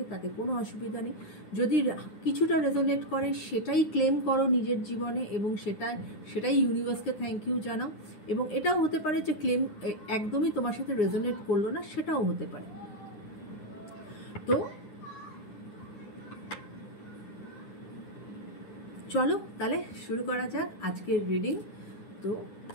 তাতে কোনো অসুবিধা নেই। যদি কিছুটা রেজোনেট করে সেটাই ক্লেম করো নিজের জীবনে, এবং সেটাই ইউনিভার্সকে থ্যাংক ইউ জানাও। এবং এটাও হতে পারে যে ক্লেম একদমই তোমার সাথে রেজোনেট করলো না, সেটাও হতে পারে। তো চলো তাহলে শুরু করা যাক আজকের রিডিং। তো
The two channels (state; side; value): late; right; 9.7 ms